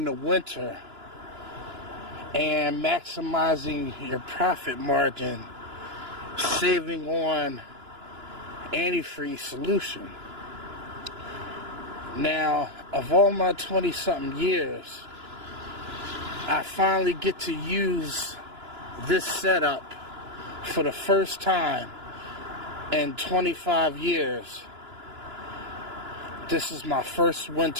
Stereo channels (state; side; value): late; left; 2.9 ms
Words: the winter and maximizing your profit margin, saving on antifreeze solution. Now, of all my 20-something years, I finally get to use this setup for the first time in 25 years. This is my first